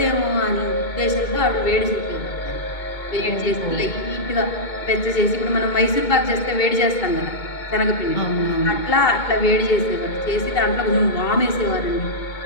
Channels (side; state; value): right; late; 2.2 ms